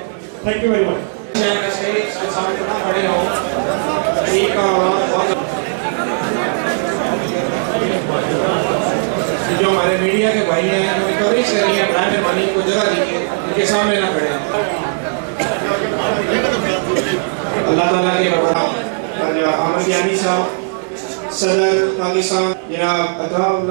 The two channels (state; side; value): silent; left; digital silence